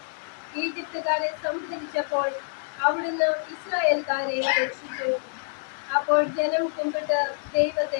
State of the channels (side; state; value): right; silent; digital silence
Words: ഈജിപ്തുകാരെ സംഹരിച്ചപ്പോൾ അവിടുന്ന് ഇസ്രായേൽക്കാരെ രക്ഷിച്ചു. അപ്പോൾ ജനം കുമ്പിട്ട്